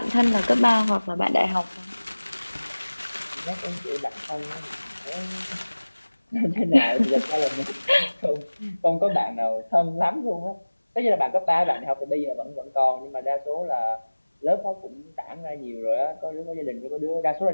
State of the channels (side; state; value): both; inverted; correlation -1.00